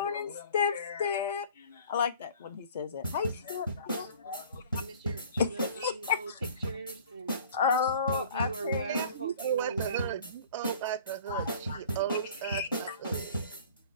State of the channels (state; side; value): inverted; both; correlation -0.48